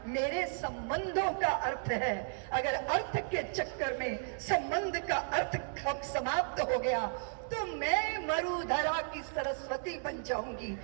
मेरे संबंधों का अर्थ है। अगर अर्थ के चक्कर में संबंध का अर्थ समाप्त हो गया तो मैं मरुधरा की सरस्वती बन जाऊंगी,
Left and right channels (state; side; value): silent; left; digital silence